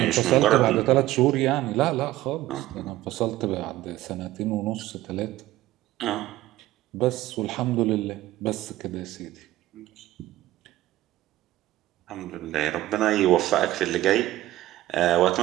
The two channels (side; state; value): left; quieter; 15.5 dB